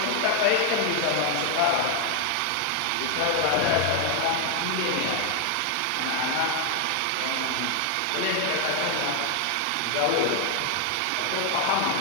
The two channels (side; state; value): both; different; correlation 0.00